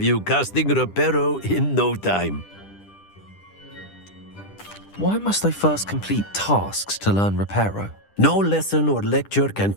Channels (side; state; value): right; late; 10 ms